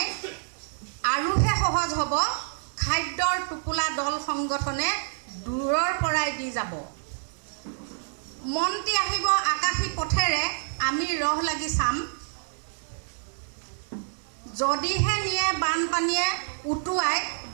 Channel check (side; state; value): left; silent; 58 dB below the other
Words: আৰুহে সহজ হ'ব, খাদ্যৰ টোপোলা দল সংগঠনে দূৰৰ পৰাই দি যাব। মন্ত্ৰী আহিব আকাশী পথেৰে, আমি ৰহ লাগি চাম, যদিহে নিয়ে বানপানীয়ে উটুৱাই,